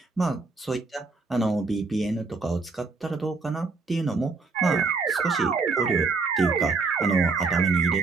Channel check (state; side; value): quieter; left; 4.1 dB